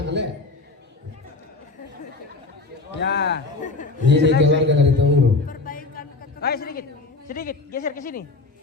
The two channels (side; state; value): right; quieter; 3.6 dB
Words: le. Ya. Ini keluarga dari Tunguru. Ayo sedikit geser ke sini.